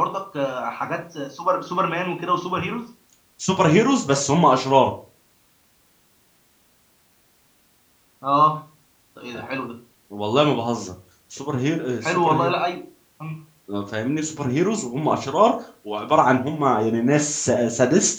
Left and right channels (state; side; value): identical; both; correlation 1.00